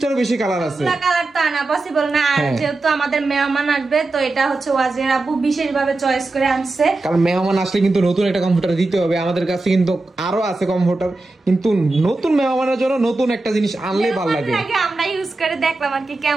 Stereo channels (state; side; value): quieter; left; 3.1 dB